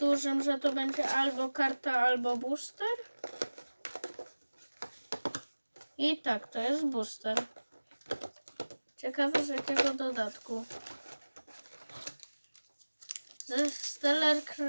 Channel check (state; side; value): inverted; both; correlation -1.00